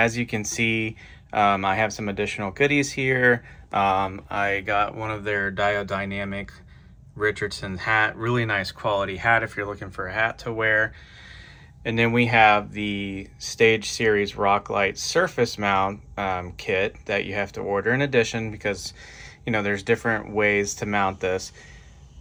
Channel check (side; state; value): both; identical; correlation 1.00